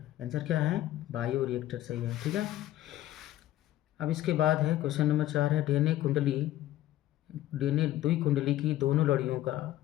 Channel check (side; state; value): right; quieter; 14.1 dB